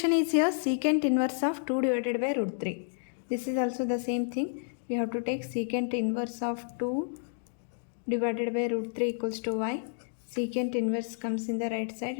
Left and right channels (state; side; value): silent; right; digital silence